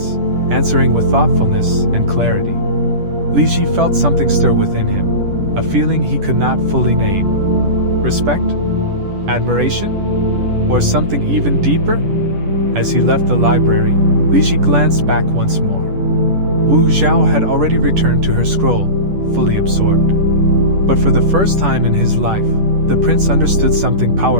answering with thoughtfulness and clarity. Li Ji felt something stir within him, a feeling he could not fully name. Respect? Admiration? Or something even deeper? As he left the library, Li Ji glanced back once more. Wu Zhao had already returned to her scroll, fully absorbed. But for the first time in his life, the prince understood something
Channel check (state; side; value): late; left; 10 ms